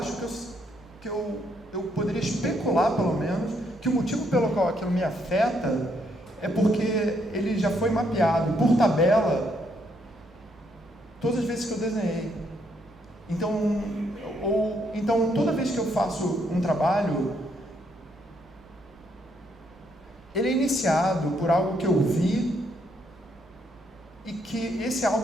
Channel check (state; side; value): normal; both; correlation 0.73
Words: que eu poderia especular, pelo menos, que o motivo pelo qual aquilo me afeta é porque ele já foi mapeado por tabela todas as vezes que eu desenhei. Então toda vez que eu faço um trabalho, ele é iniciado por algo que eu vi, e que esse